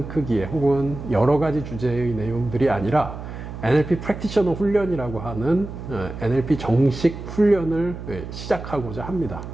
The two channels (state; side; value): noise; right; hum, 10 dB below the sound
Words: 크기의 혹은 여러 가지 주제의 내용들이 아니라 NLP 프랙티셔너 훈련이라고 하는 NLP 정식 훈련을 시작하고자 합니다.